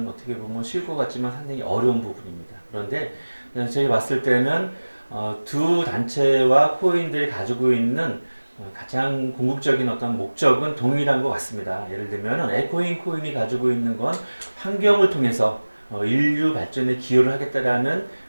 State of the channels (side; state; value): both; inverted; correlation -1.00